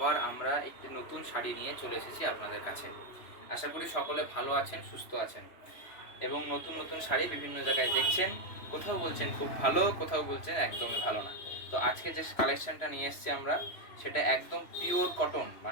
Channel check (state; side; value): late; right; 3.0 ms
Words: আমরা একটি নতুন শাড়ি নিয়ে চলে এসেছি আপনাদের কাছে। আশা করি সকলে ভালো আছেন, সুস্থ আছেন এবং নতুন নতুন শাড়ি বিভিন্ন জায়গায় দেখছেন। কোথাও বলছেন খুব ভালো, কোথাও বলছেন একদমই ভালো না। তো আজকে যে কালেকশনটা নিয়ে এসেছি আমরা, সেটা একদম পিওর কটন,